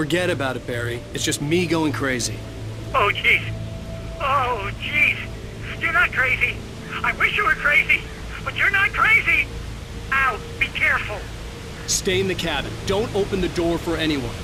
Forget about it, Barry. It's just me going crazy. Oh, jeez. Oh, jeez. You're not crazy. I wish you were crazy, but you're not crazy. Ow, be careful. Stay in the cabin. Don't open the door for anyone.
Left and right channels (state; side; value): identical; both; correlation 1.00